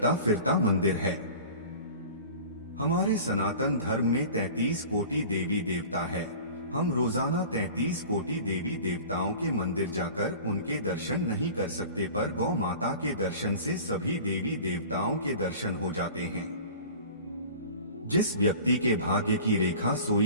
फिरता मंदिर है। हमारे सनातन धर्म में 33 कोटि देवी देवता है, हम रोजाना 33 कोटि देवी देवताओं के मंदिर जाकर उनके दर्शन नहीं कर सकते, पर गौ माता के दर्शन से सभी देवी देवताओं के दर्शन हो जाते हैं। जिस व्यक्ति के भाग्य की रेखा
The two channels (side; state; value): both; inverted; correlation -0.41